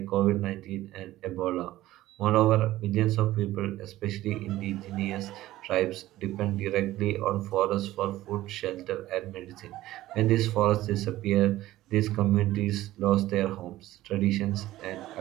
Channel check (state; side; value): quieter; left; 15.6 dB